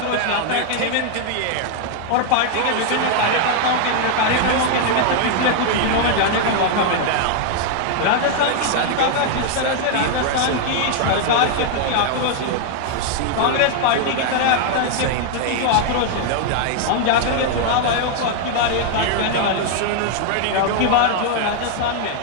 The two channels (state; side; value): different; both; correlation 0.00